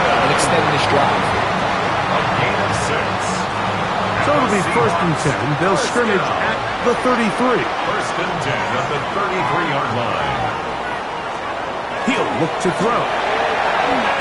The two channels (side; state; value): both; identical; correlation 1.00